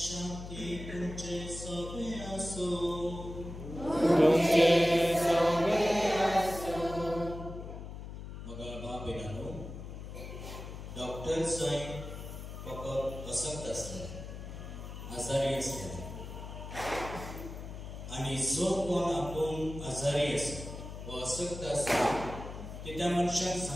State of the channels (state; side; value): noise; left; hum, 10 dB below the sound